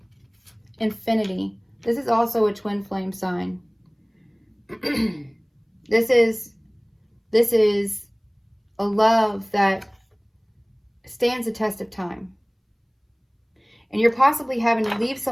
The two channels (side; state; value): both; identical; correlation 1.00